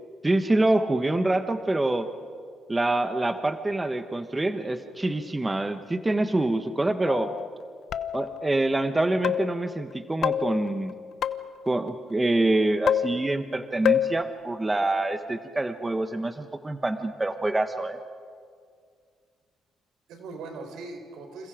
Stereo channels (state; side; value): normal; both; correlation 0.90